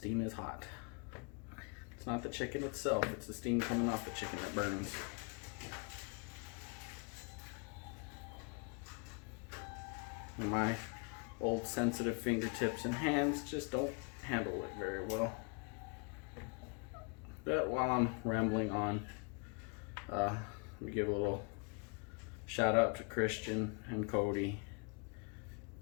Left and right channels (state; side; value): quieter; right; 35.1 dB